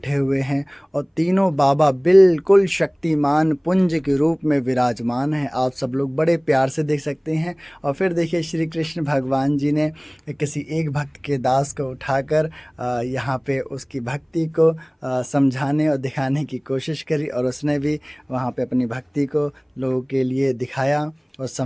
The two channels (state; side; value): identical; both; correlation 1.00